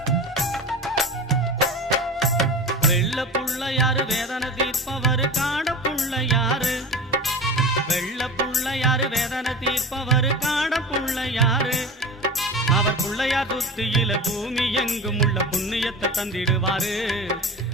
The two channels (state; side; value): normal; both; correlation 0.32